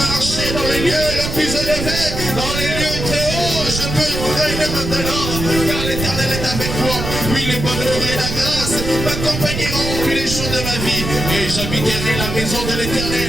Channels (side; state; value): right; noise; rumble, 5 dB below the sound